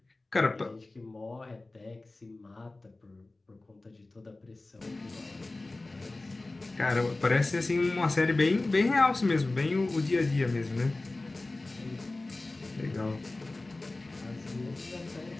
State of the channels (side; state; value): right; quieter; 3.0 dB